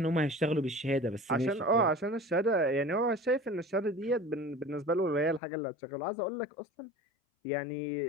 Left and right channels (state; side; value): drops out; right; at 5.4 s